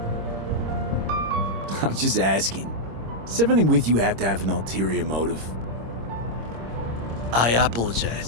I'm just asking. Does everything with you have to have an ulterior motive? I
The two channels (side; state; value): left; late; 26 ms